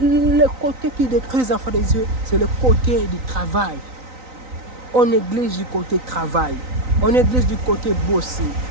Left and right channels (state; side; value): late; left; 3.9 ms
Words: côté qui détruit les enfants des yeux, c'est le côté du travail. On néglige du côté travail. On néglige du côté bosser.